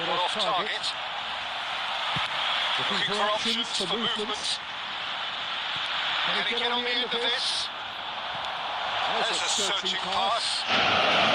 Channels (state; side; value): identical; both; correlation 1.00